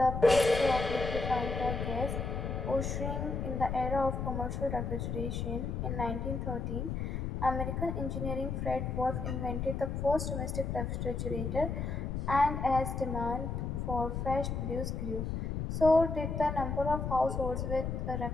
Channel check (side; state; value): left; noise; rumble, 2 dB below the sound